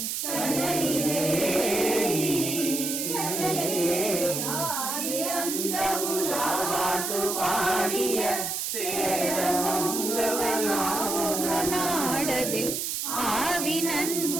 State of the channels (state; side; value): noise; right; hiss, 2 dB below the sound